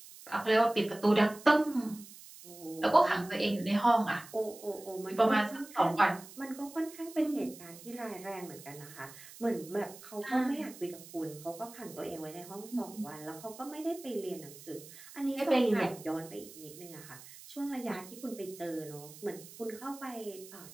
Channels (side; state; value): right; noise; hiss, 17 dB below the sound